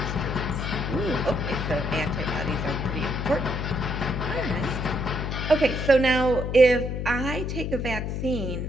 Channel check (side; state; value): left; noise; hum, 3 dB below the sound